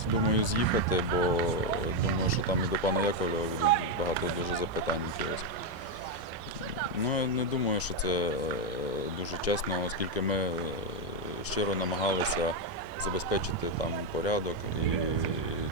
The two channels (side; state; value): left; late; 3.5 ms